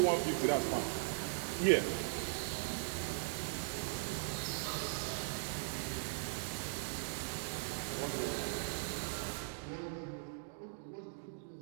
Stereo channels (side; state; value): left; silent; digital silence